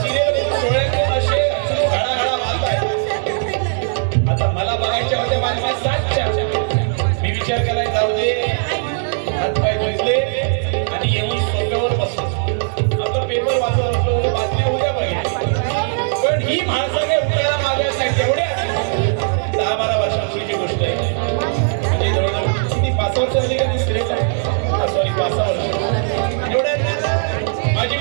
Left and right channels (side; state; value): left; silent; digital silence